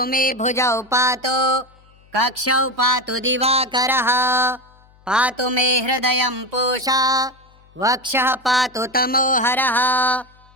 मे भुजौ पातु कक्षौ पातु दिवाकरः पातु मे हृदयं पूषा वक्षः पातु तमोहरः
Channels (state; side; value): noise; left; hum, 29 dB below the sound